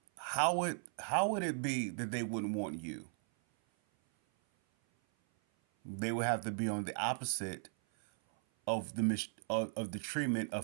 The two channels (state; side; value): silent; left; 53 dB below the other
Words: How would it be that they wouldn't want you? They would have to be on the opposite of the treatment